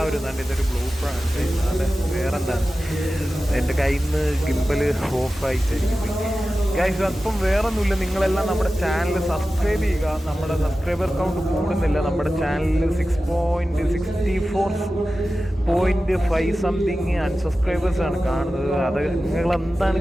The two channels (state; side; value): normal; both; correlation 0.94